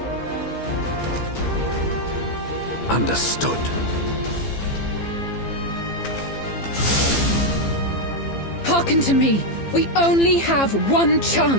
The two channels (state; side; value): late; right; 15 ms